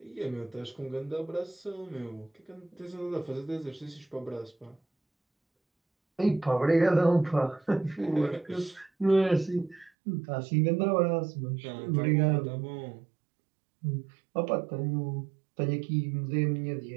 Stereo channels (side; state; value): left; drops out; at 9.9 s